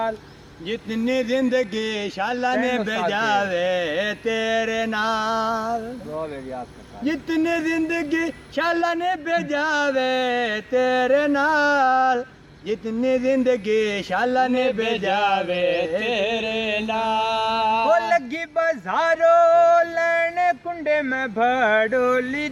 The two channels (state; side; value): identical; both; correlation 1.00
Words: जितनी जिंदगी शाला ने भेजावे तेरे नाल, जितनी जिंदगी शाला ने भेजावे तेरे नाल, जितनी जिंदगी शाला ने भेजावे तेरे नाल। वो लगी बाजारों लेने कुंडे में भड़ोली